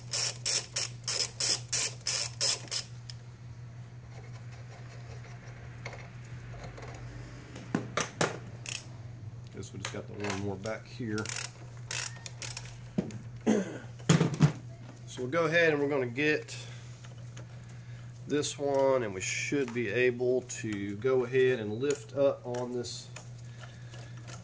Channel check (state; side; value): identical; both; correlation 1.00